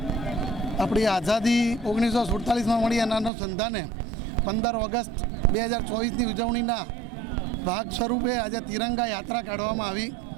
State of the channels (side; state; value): left; drops out; at 3.3 s